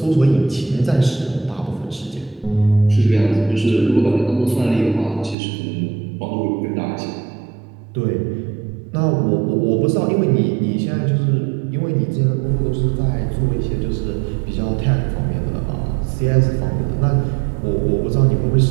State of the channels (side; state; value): left; drops out; at 5.4 s